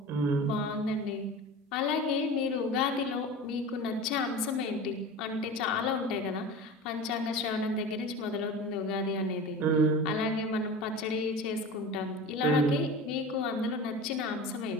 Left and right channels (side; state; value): both; normal; correlation 0.33